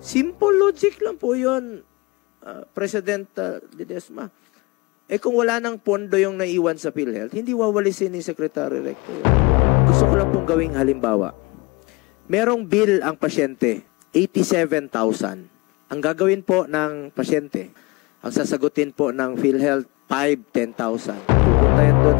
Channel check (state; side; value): quieter; right; 25.4 dB